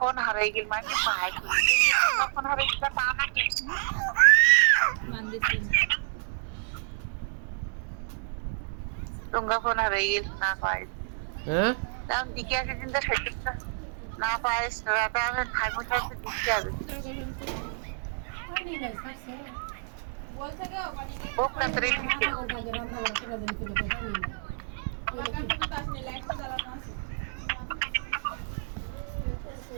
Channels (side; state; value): left; silent; digital silence